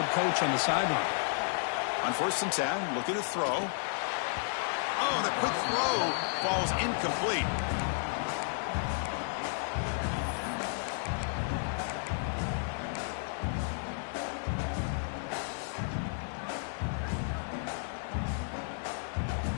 coach on the sideline. On 1st and 10, looking to throw. Oh, the quick throw falls incomplete.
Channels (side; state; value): right; silent; digital silence